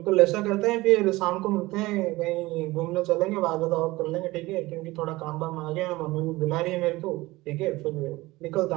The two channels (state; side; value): quieter; left; 20.0 dB